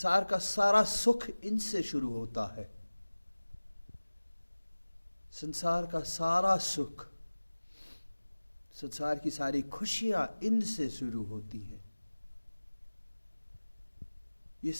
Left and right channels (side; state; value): both; inverted; correlation -1.00